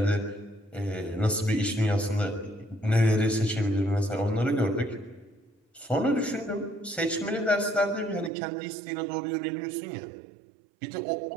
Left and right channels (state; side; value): drops out; left; at 8.3 s